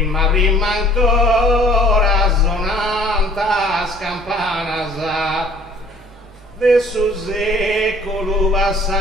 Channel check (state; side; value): normal; both; correlation 0.54